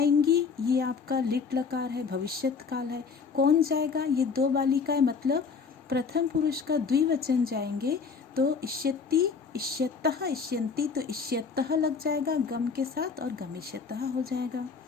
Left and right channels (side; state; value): right; quieter; 5.4 dB